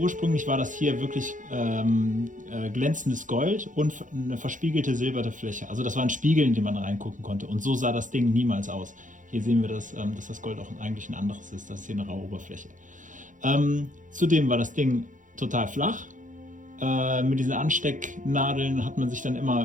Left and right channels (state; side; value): late; left; 0.37 ms